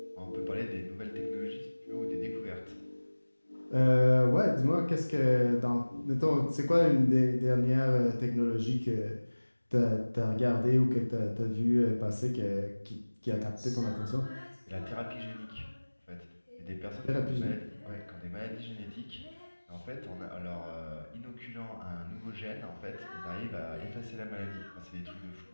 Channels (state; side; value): inverted; both; correlation -1.00